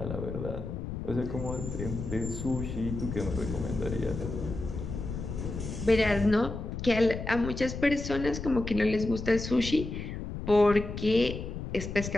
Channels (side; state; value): left; noise; rumble, 6 dB below the sound